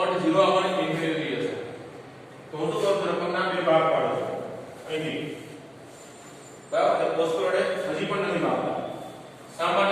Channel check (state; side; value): identical; both; correlation 1.00